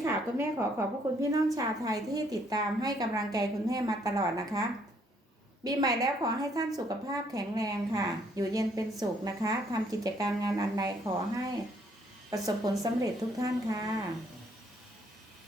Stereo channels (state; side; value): normal; both; correlation 0.67